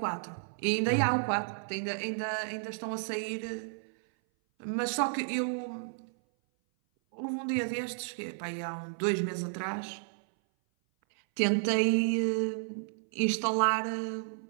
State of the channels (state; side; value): silent; left; 56 dB below the other